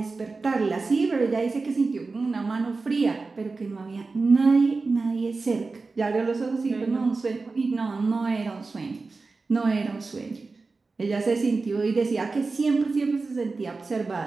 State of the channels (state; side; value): quieter; left; 3.9 dB